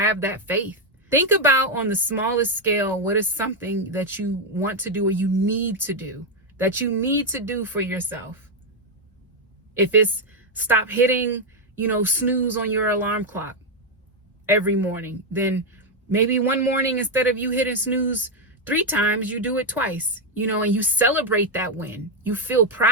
that faith. Think about, on the smallest scale, what is something that you want to do or you need to do, that you need to do for yourself. If it's stop hitting, you know, snooze on your alarm clock every morning, then maybe one morning, instead of you hitting snooze 3 times, you do it twice, you know, and you celebrate that win. You feel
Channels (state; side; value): normal; both; correlation 0.03